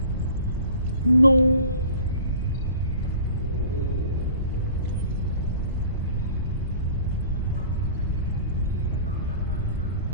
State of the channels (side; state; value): both; inverted; correlation -0.44